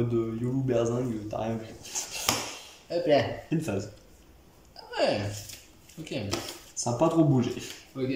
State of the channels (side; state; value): both; identical; correlation 1.00